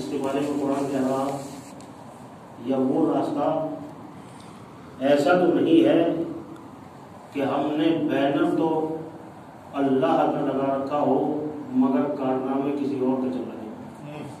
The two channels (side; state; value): both; identical; correlation 1.00